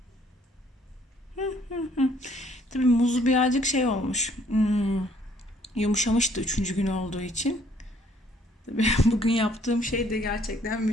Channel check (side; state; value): both; normal; correlation 0.63